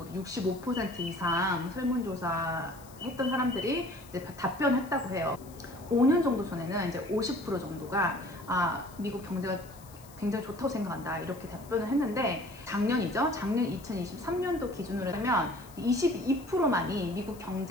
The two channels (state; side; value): noise; left; hiss, 22 dB below the sound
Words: 65% 이상 설문조사 했던 사람들이 이제 답변했다고 해요. 5년 정도 전에는 이제 50% 정도가 미국 경제가 굉장히 좋다고 생각한다, 이렇게 답변을 했는데, 작년이죠. 작년 2023년도 기준으로 하면 22%만이 미국